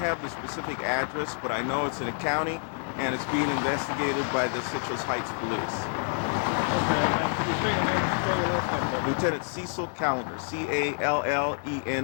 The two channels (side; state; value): right; silent; 59 dB below the other